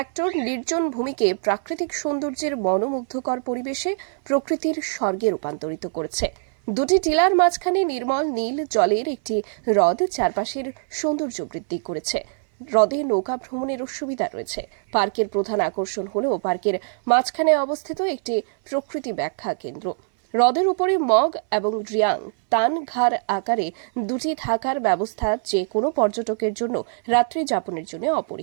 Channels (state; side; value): silent; left; 61 dB below the other